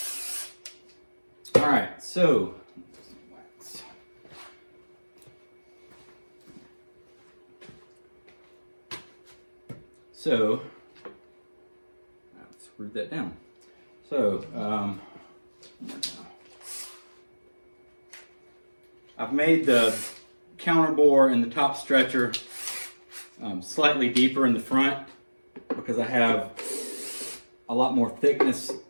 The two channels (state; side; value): inverted; both; correlation -1.00